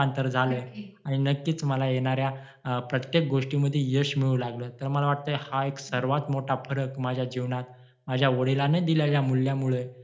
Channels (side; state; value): both; identical; correlation 1.00